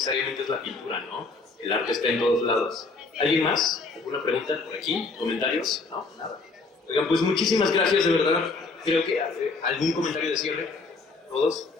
es la pintura, ¿no? El arte está en todos lados. ¿Alguien más? ¿Alguna pregunta por aquí? ¿Comentarios? No, nada. Oigan, pues muchísimas gracias, de verdad. Creo que algún comentario de cierre, todos.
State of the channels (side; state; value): right; quieter; 3.9 dB